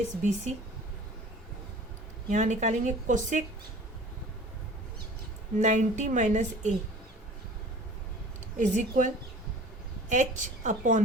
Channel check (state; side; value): normal; both; correlation 0.45